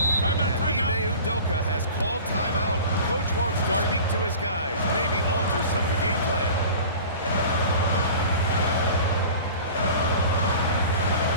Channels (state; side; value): inverted; both; correlation -0.40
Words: Timeout, And timeout. Ime Udoka has called timeout. Coach wants to speak to his guys, maybe alter some of the game plan.